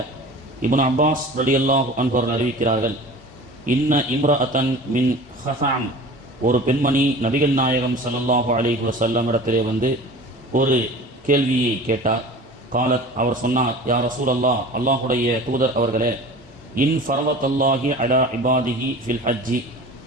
ابن عباس رضي الله عنه அறிவிக்கிறார்கள் இன்ன இம்ரஅத்தன் மின் ஹஸாம் ஒரு பெண்மணி நபிகள் நாயகம் ஸல்லல்லாஹு அலைஹி வஸல்லம் இடத்திலே வந்து ஒரு கேள்வியை கேட்டார். காலத் அவர் சொன்னார், யா ரசூலல்லாஹ், அல்லாஹுடைய தூதர் அவர்களே, இன் ஃபரவத்தல்லாஹி அலா இபாதிஹி ஃபில் ஹஜ்ஜி,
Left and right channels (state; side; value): normal; both; correlation 0.39